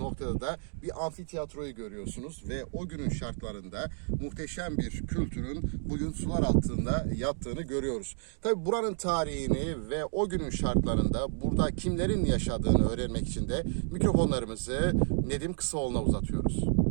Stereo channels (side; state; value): left; silent; 57 dB below the other